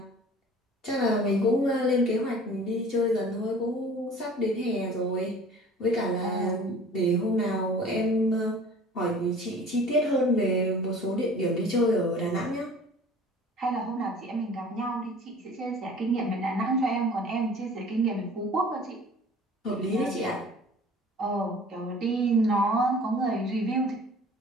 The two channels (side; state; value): both; normal; correlation 0.46